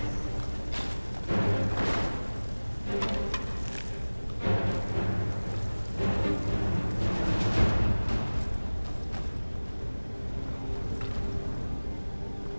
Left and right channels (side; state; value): both; inverted; correlation -1.00